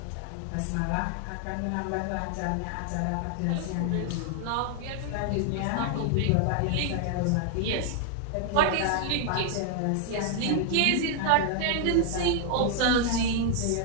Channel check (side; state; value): both; different; correlation 0.00